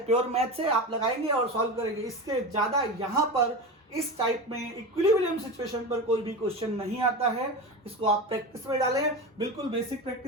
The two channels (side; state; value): both; normal; correlation 0.25